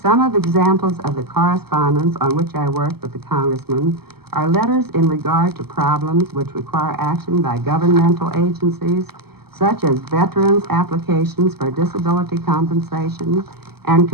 some of the examples of the correspondence on which I work with the congressman are letters in regard to problems which require action by governmental agencies, such as veterans' applications for disability compensation and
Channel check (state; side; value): late; left; 0.96 ms